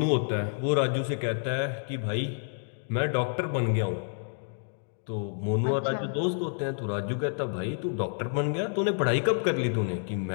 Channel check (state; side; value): silent; right; digital silence